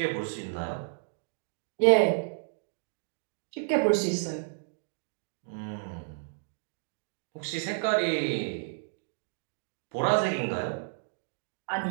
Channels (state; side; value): silent; left; digital silence